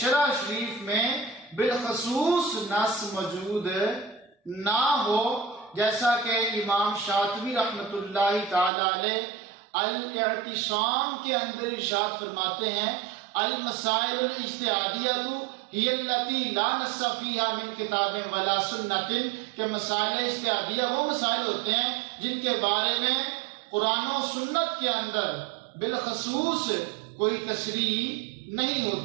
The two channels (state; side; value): drops out; left; at 8.7 s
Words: شریف میں بالخصوص نص موجود نہ ہو، جیسا کہ امام شاطبی رحمۃ اللہ تعالی علیہ الاعتصام کے اندر ارشاد فرماتے ہیں، المسائل الاجتہادیۃ ہی التی لا نص فیہا من کتاب ولا سنت، کہ مسائل اجتہادیہ وہ مسائل ہوتے ہیں جن کے بارے میں قرآن و سنت کے اندر بالخصوص کوئی تشریح نہیں